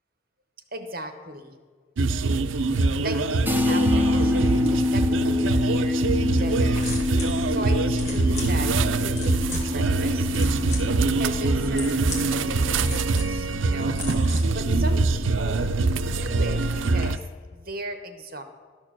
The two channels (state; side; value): normal; both; correlation 0.68